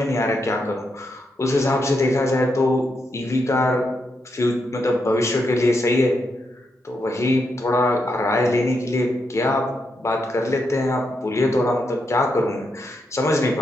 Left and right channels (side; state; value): both; normal; correlation 0.82